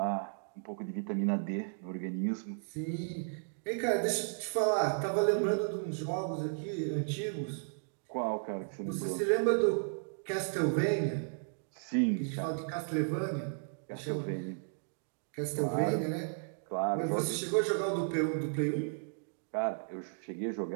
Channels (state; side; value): silent; left; digital silence